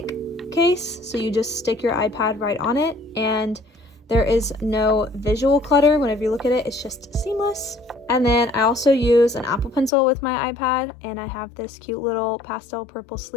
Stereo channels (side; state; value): right; drops out; at 9.9 s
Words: case. So you just stick your iPad right on it, and there is no visual clutter. Whenever you look at it, it's just seamless. And then I also use an Apple Pencil with my iPad, and I have this cute little pastel purple